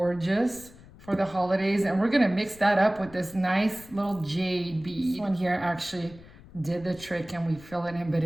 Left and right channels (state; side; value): noise; left; rumble, 21 dB below the sound